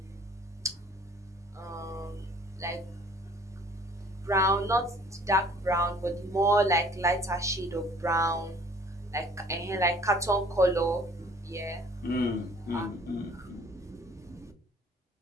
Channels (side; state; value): both; normal; correlation 0.54